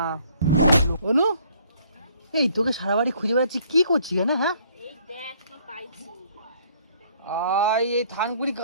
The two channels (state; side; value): inverted; both; correlation -0.61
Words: অনু, এই তোকে সারা বাড়ি খুঁজে বেড়াচ্ছি, কি করছিস কেন? হ্যাঁ এই দেখ কি পাইছি এই থানকুনি